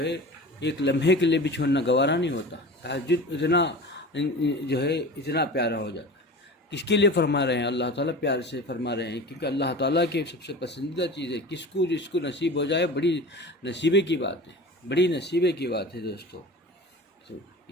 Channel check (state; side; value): normal; both; correlation 0.35